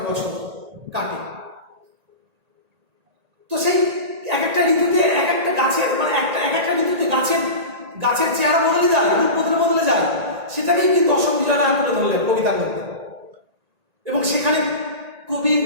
বছর কাটে। তো সেই এক একটা ঋতুতে এক একটা গাছের মানে এক একটা ঋতুতে গাছের চেহারা বদলে যায়, রূপ বদলে যায়, সেটাকেই কিন্তু অশোক বিজয় রাহা তুলে ধরলেন কবিতার মধ্যে। এবং সেখানে কবির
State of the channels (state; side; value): late; left; 1.8 ms